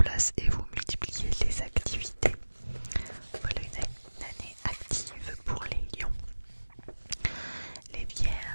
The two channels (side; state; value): both; inverted; correlation -1.00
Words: et vous multipliez les activités. Voilà une année active pour les lions. Les